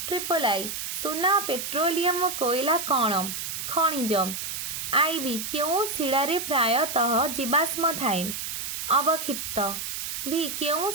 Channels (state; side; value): noise; right; hiss, 5 dB below the sound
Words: ट्रिपल आई सुना, पेट्रोलियम, कोयला कौन? खनिज। आईबी क्यों शिलारे प्रायतः जीवाश्म थाए? अवक्षिप्त। भी क्यों